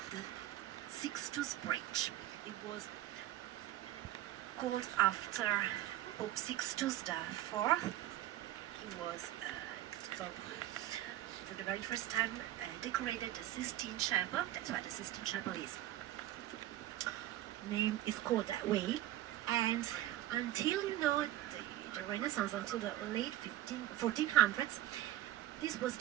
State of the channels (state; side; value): quieter; left; 13.6 dB